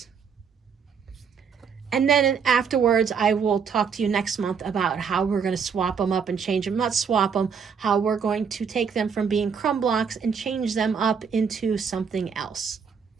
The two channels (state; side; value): quieter; left; 6.4 dB